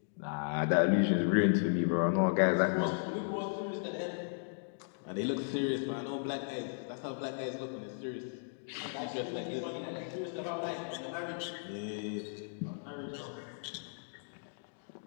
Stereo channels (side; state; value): right; silent; digital silence